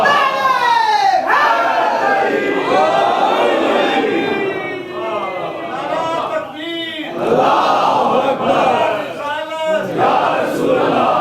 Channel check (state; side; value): identical; both; correlation 1.00